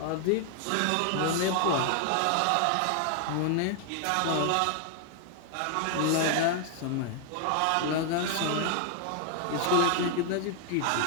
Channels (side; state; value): both; different; correlation 0.00